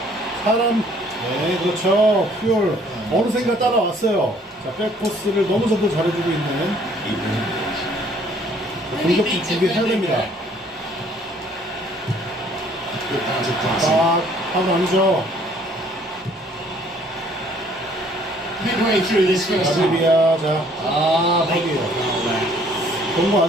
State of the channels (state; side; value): normal; both; correlation 0.60